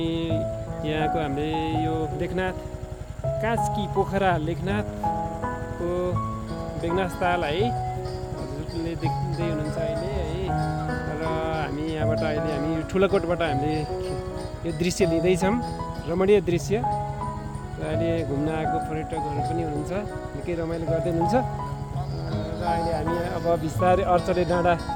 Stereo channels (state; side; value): identical; both; correlation 1.00